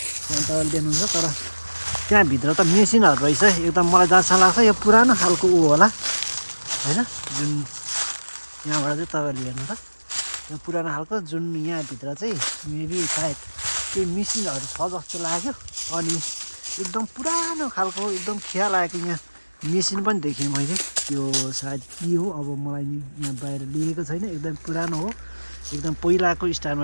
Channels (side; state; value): both; inverted; correlation -1.00